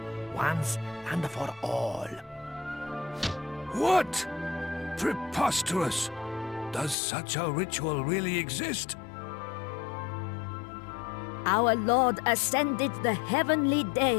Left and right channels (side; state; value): right; drops out; at 7.0 s